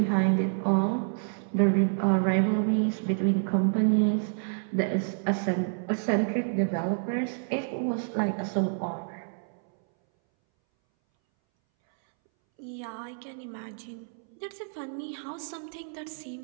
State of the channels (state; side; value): silent; left; 59 dB below the other